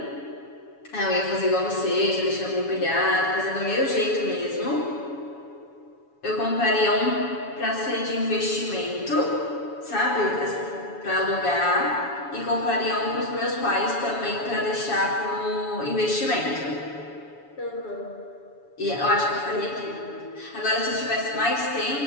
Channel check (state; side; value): late; right; 7.1 ms